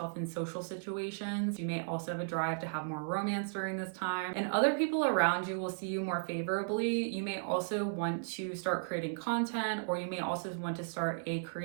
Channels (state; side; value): silent; left; 54 dB below the other